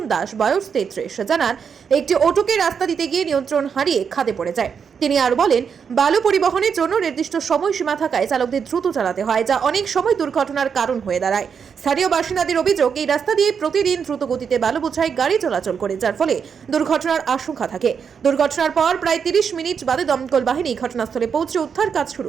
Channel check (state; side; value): quieter; left; 6.7 dB